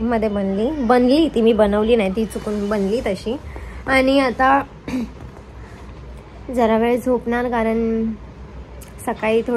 बनली ती. मी बनवली नाही, ती चुकून बनली तशी. आणि आता जरा वेळ झोपणार, कारण सकाळी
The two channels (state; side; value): identical; both; correlation 1.00